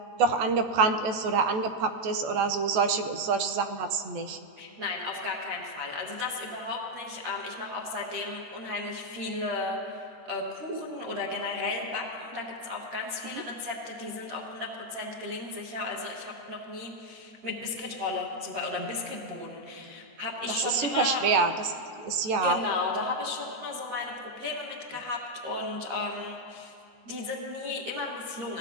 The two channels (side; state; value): left; late; 14 ms